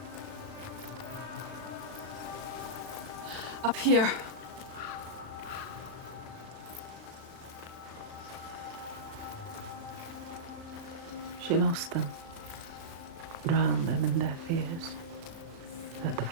Up here. She lost them, drowned them in their fears. Let the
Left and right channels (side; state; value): left; late; 36 ms